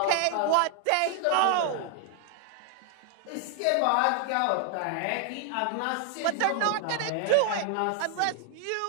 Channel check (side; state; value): both; different; correlation 0.00